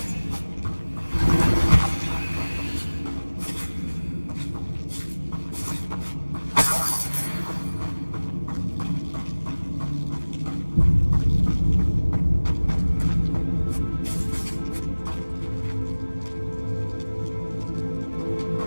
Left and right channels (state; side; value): inverted; both; correlation -1.00